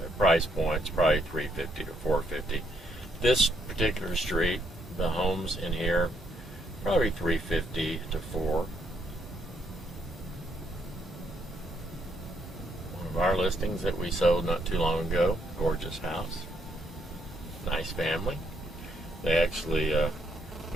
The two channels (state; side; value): normal; both; correlation 0.73